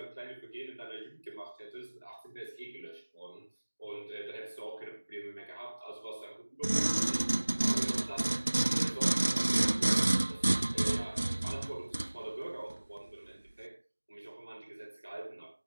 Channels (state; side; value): inverted; both; correlation -1.00